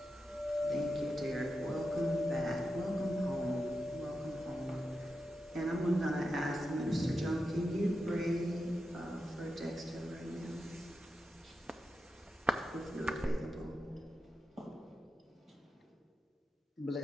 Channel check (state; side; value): normal; both; correlation 0.89